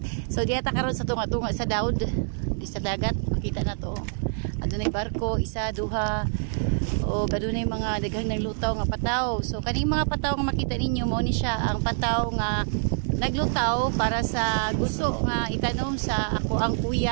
So diata karon sa tunga-tunga sa Daud, di sa dagat, makita na to. Adunay barko, isa, duha, o adunay mga daghang naglutaw nga pataw. So kaning mga pataw nga makita ninyo mo ni siya ang pataw nga naglutaw para sa gusto nga itanom sa ako ang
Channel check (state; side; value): silent; left; 61 dB below the other